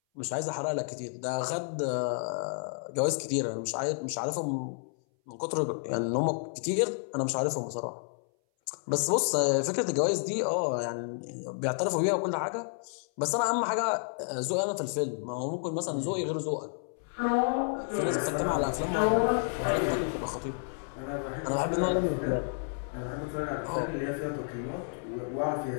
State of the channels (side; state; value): right; silent; 57 dB below the other